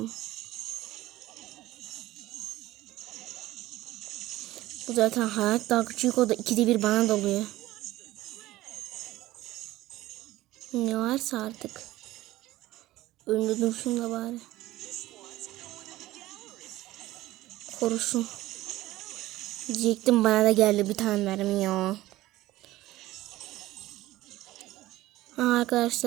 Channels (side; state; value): left; quieter; 16.7 dB